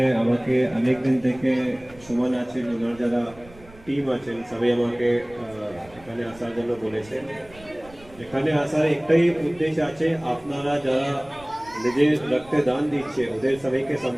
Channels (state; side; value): noise; right; rumble, 23 dB below the sound